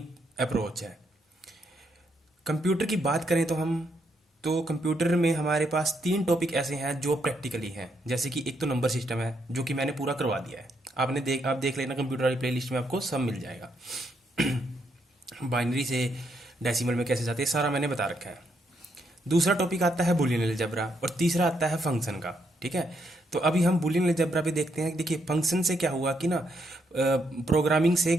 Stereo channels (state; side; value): normal; both; correlation 0.76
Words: अप्रोच है। कंप्यूटर की बात करें तो कंप्यूटर में हमारे पास तीन टॉपिक ऐसे हैं जो प्रैक्टिकली हैं। जैसे कि एक तो नंबर सिस्टम है जो कि मैंने पूरा करवा दिया है। आप देख लेना, कंप्यूटर वाली प्लेलिस्ट में आपको सब मिल जाएगा। बाइनरी से डेसिमल में कैसे जाते हैं सारा मैंने बता रखा है। दूसरा टॉपिक आता है बूलियन अलजेब्रा और तीसरा आता है फंक्शन का। ठीक है। तो अभी हम बूलियन अलजेब्रा पे देखते हैं। देखिए फंक्शन से क्या हुआ कि ना, प्रोग्रामिंग से